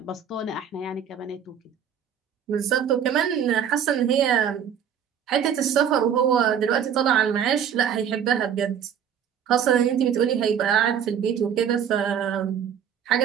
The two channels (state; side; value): quieter; left; 8.3 dB